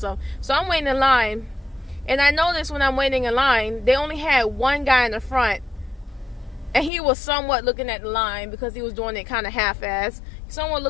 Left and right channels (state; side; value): drops out; right; at 6.9 s